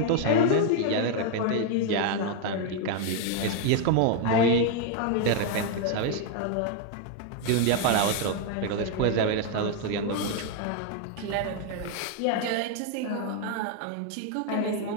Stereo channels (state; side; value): different; both; correlation 0.00